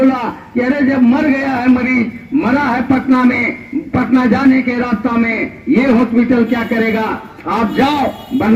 कि अरे जब मर गया है मरीज, मरा है पटना में, पटना जाने के रास्ता में, ये हॉस्पिटल क्या करेगा, आप जाओ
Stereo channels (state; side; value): identical; both; correlation 1.00